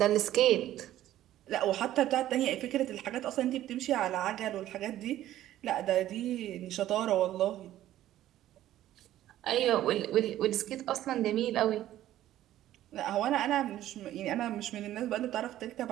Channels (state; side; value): quieter; left; 13.3 dB